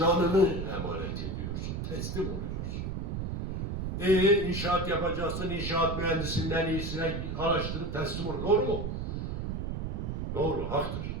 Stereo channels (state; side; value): noise; right; rumble, 3 dB below the sound